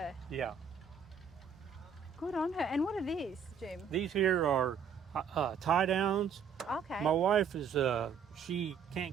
Yeah. Good on her. And what are these, Jim? These here are tie downs. Okay. My wife is she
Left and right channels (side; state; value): left; quieter; 6.5 dB